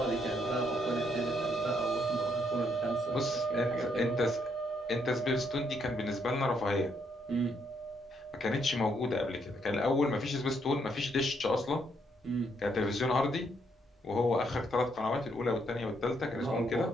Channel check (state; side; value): normal; both; correlation 0.74